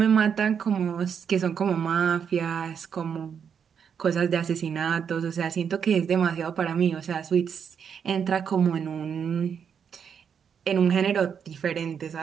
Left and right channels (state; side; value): quieter; left; 7.3 dB